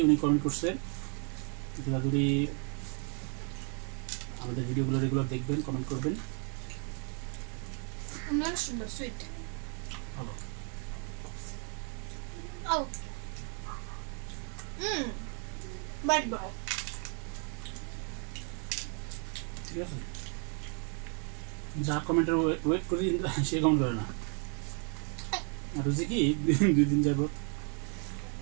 উনি কমেন্ট করছে। তিথিবাদুরী আমাদের ভিডিওগুলো রেগুলার দেখবেন, কমেন্ট করবেন। সুইট ভালো। ঠিক আছে, যা কমেন্টের ওয়েট করি, সে কমেন্ট করে না। আর হচ্ছে কি, 2 দিন যাবো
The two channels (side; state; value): left; quieter; 39.6 dB